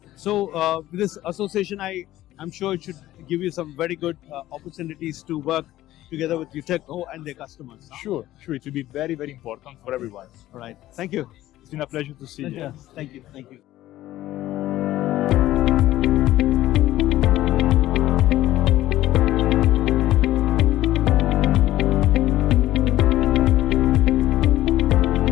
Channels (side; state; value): right; quieter; 14.8 dB